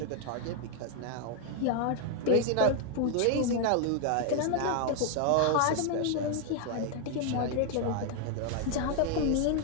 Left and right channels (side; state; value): both; different; correlation 0.00